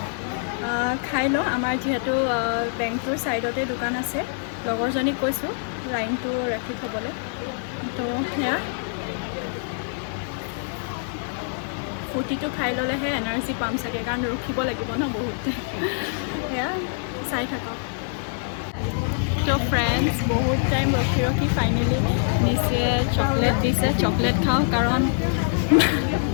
খাই লওঁ আমাৰ যিহেতু বেংকটোৰ ছাইডতে দোকান আছে লগৰজনীক কৈছোঁ লাইনটো ৰাখি থ'বলৈ তো সেয়া ফুটিটো খাই ল'লেহে এনাৰ্জি পাম চাগে কাৰণ ৰখিব লাগিব ন বহুত সেয়া চাই থাকক তো ফ্ৰেণ্ডছ বহুত টাইম ৰখি ফাইনেলি নিচে চকলেট দিছে চকলেট খাওঁ কাৰণ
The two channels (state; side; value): silent; right; 62 dB below the other